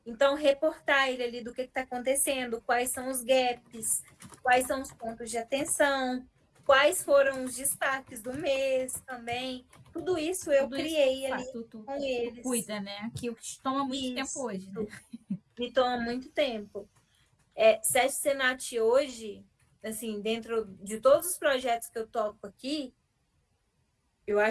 Então, reportar ele ali do que está acontecendo, quais são os gaps, quais são os pontos de atenção, quais foram os destaques do mês também. Tudo isso eu Tudo isso criei ali com tu eles. cuida, né? Que toma muito tempo Isso hoje, né? me toma muito tempo. SESC Senat hoje, assim, dentro de todos os projetos que eu toco aqui, eu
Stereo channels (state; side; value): identical; both; correlation 1.00